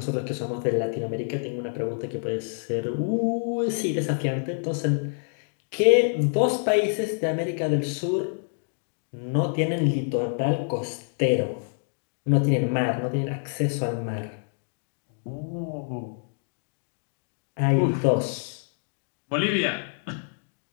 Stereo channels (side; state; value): right; silent; digital silence